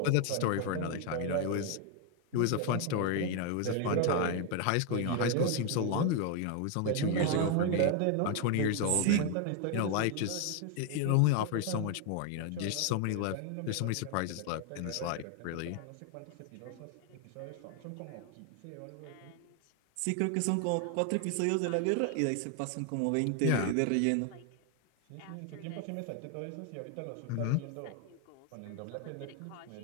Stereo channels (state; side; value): different; both; correlation 0.01